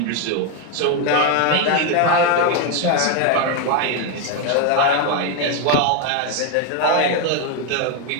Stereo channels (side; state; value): both; different; correlation 0.01